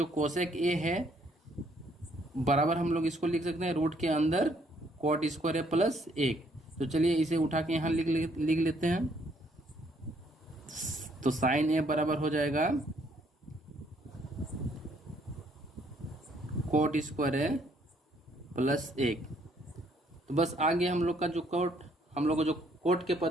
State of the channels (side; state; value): both; normal; correlation 0.67